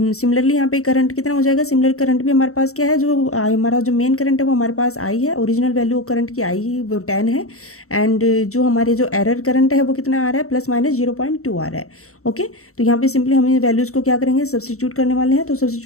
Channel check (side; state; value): right; late; 0.64 ms